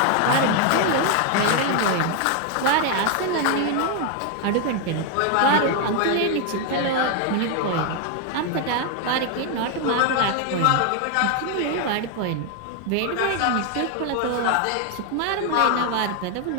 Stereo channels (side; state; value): both; different; correlation 0.01